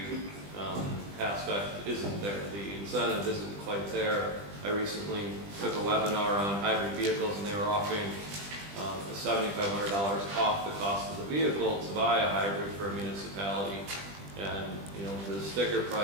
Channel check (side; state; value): left; late; 20 ms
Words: aspect isn't there, the incentive isn't quite there. I recently took a webinar on hybrid vehicles, and they were offering $7,500 off the cost of the vehicle to buy a hybrid for a municipality, and you know, the sticker